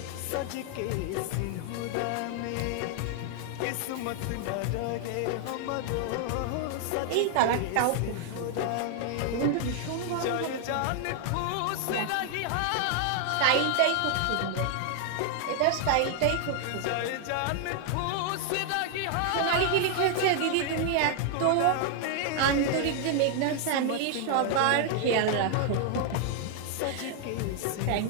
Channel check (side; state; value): both; different; correlation 0.00